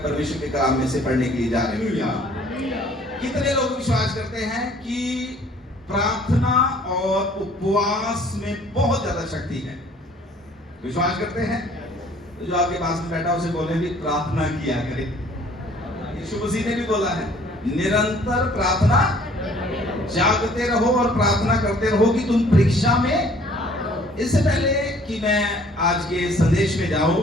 परमेश्वर के कलाम में से पढ़ने के लिए जा रहे हैं। कितने लोग विश्वास करते हैं कि प्रार्थना और उपवास में बहुत ज्यादा शक्ति है? विश्वास करते हैं? तो जो आपके पास में बैठा उसे बोले भी प्रार्थना किया करे। यीशु मसीह ने भी बोला है, निरंतर प्रार्थना जागते रहो और प्रार्थना करते रहो कि तुम परीक्षा में। इससे पहले कि मैं आज के संदेश में जाऊं,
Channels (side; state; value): both; normal; correlation 0.56